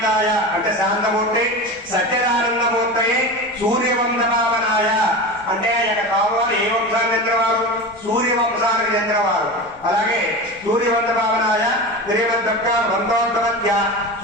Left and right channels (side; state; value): left; noise; rumble, 27 dB below the sound